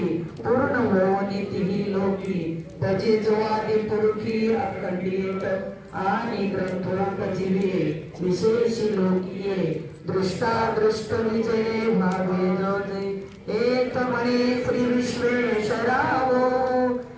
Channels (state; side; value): identical; both; correlation 1.00